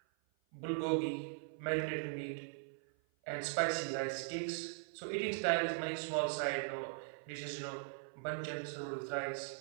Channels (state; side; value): silent; left; 51 dB below the other